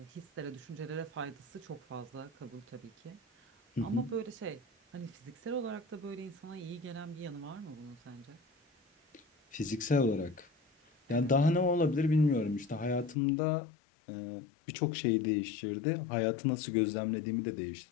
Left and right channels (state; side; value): drops out; right; at 13.2 s